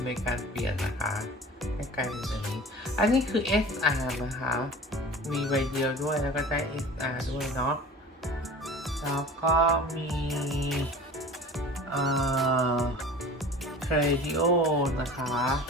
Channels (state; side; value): normal; both; correlation 0.40